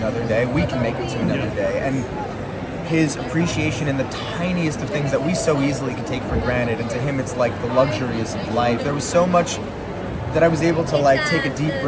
day, we can make it to another day. And his appreciation in the tiniest of things that we so easily can take for granted, and to him it's like the luxuries of life. There was so much that I was able to take a deep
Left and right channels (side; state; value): both; identical; correlation 1.00